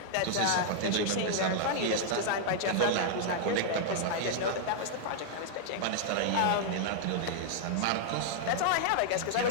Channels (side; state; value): both; different; correlation -0.01